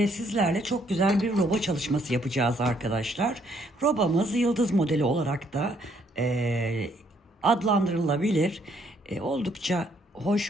sizlerle çok güzel bir roba çalışması yapacağız arkadaşlar. Robamız yıldız modeli olarak da adlandırılabilir. Oldukça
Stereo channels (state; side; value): normal; both; correlation 0.68